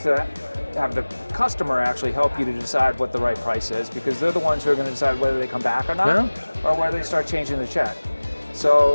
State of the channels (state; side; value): inverted; both; correlation -1.00